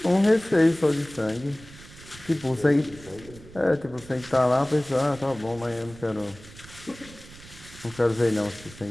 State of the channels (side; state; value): right; noise; rumble, 19 dB below the sound